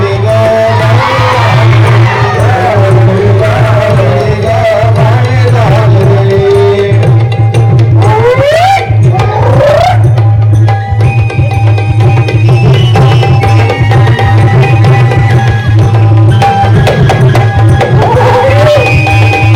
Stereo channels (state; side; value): identical; both; correlation 1.00